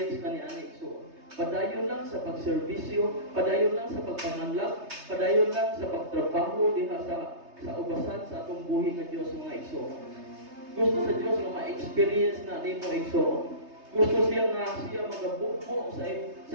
ka ni Ani Igsoon. Padayon lang sa pagserbisyo, padayon lang sa pagpanganlag, padayon lang sa pagtrabaho diha sa ubasan sa atong buhi nga Diyos mga Igsoon. Gusto sa Diyos nga ma-experience na nimo Igsoon. Gusto siya nga siya magabukbo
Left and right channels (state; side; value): late; left; 3.3 ms